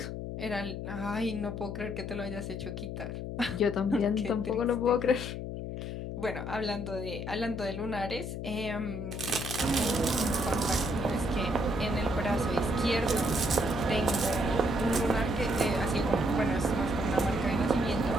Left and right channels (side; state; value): left; noise; hum, 5 dB below the sound